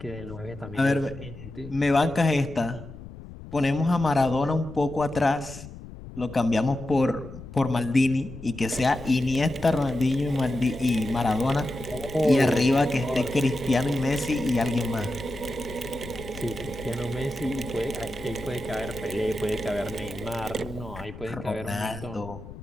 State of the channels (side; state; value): left; noise; rumble, 14 dB below the sound